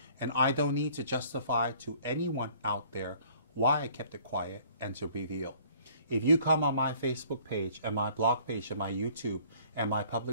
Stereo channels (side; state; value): both; inverted; correlation -0.56